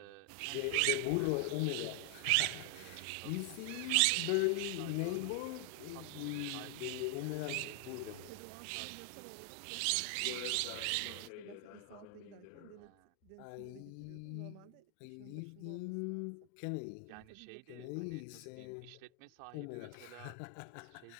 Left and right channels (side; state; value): both; different; correlation 0.00